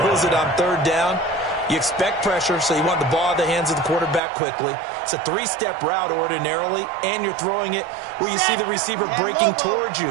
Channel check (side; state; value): left; drops out; at 4.2 s